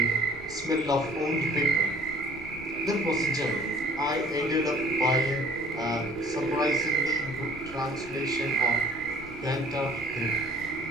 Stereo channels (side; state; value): left; noise; rumble, 18 dB below the sound